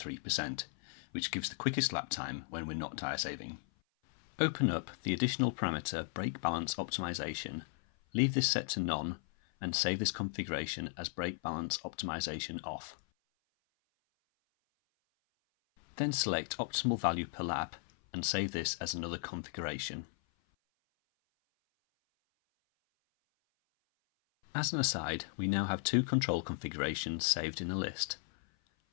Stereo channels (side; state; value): right; silent; 54 dB below the other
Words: which gives the quickest lap time when we're not tyre saving. Open up the additional parameter brake balance optimization, leave this set to none, and save this configuration as brake balance optimization off. Then select optimal value per lap and save this as another configuration. As an aside, we now have two control configurations saved in a list.